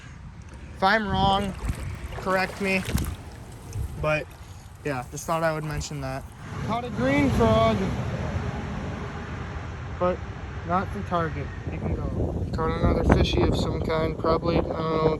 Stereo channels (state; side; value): identical; both; correlation 1.00